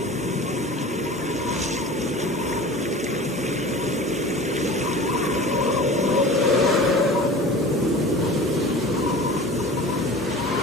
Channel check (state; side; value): normal; both; correlation 0.38